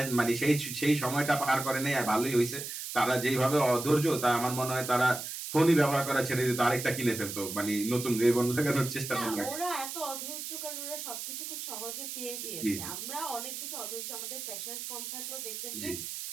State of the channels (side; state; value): right; noise; hiss, 7 dB below the sound